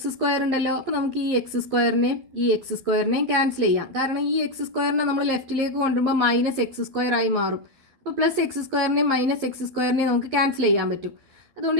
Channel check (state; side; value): late; left; 11 ms